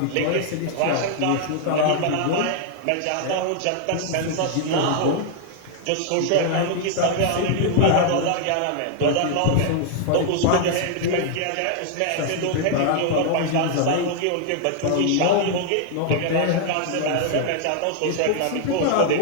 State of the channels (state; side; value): different; both; correlation 0.00